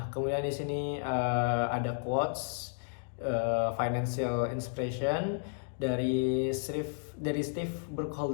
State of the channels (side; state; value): right; silent; digital silence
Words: kemudian di sini ada quotes financial inspiration dari Steve